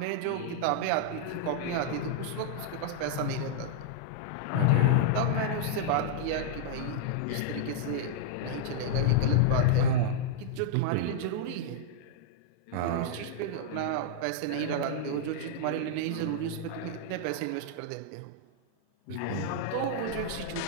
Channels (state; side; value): different; both; correlation -0.01